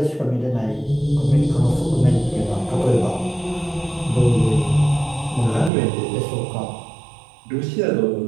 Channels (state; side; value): drops out; left; at 5.7 s